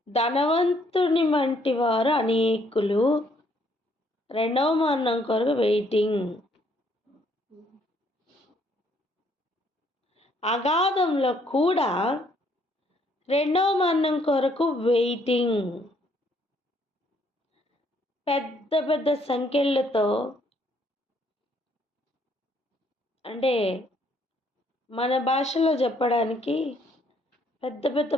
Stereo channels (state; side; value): normal; both; correlation 0.67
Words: ధనవంతుని వంటి వారు అనేకులు రెండవ మరణం కొరకు వెయిటింగ్. అగాధంలో కూడా రెండవ మరణం కొరకు వెయిటింగ్. పెద్ద పెద్ద సంఖ్యలతో, అంటే మన భాషలో చెప్పడానికి పెద్ద పెద్ద